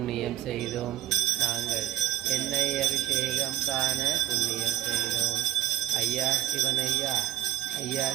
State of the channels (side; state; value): left; quieter; 13.1 dB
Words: செய்தோம். நாங்கள் எண்ணெய் அபிஷேகம் காண புண்ணியம் செய்தோம். ஐயா சிவனையா, ஐயா